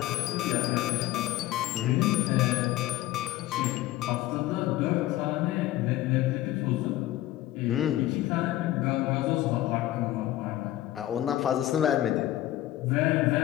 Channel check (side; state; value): right; quieter; 14.9 dB